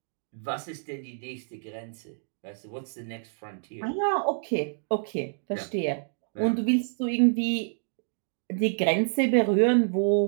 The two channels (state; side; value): silent; left; digital silence